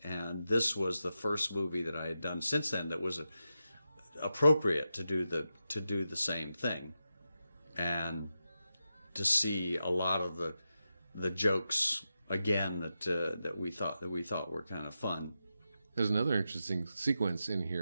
And this was the first movie that I had done since then that was appropriate to do the same thing, and to see a lot of the jokes again that we thought were kind of fun. There's another interesting sequence in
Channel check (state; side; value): inverted; both; correlation -0.89